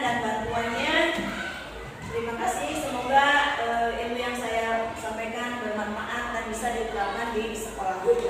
bantuannya. Terima kasih, semoga ilmu yang saya sampaikan bermanfaat dan bisa diterapkan di sekolah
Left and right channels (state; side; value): identical; both; correlation 1.00